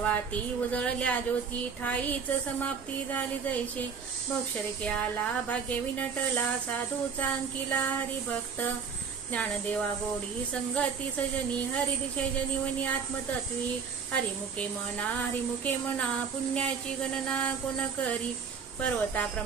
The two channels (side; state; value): left; quieter; 6.1 dB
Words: उजळल्या ज्योती ठाईच समाप्ती झाली जैसे मोक्षरेखे आला भाग्य विनटला साधूचा अंकिला हरिभक्त ज्ञानदेवा गोडी संगती सजनी हरिदिशे जनिवनी आत्मतत्वी हरिमुखे म्हणा पुण्याची गणना कोण करी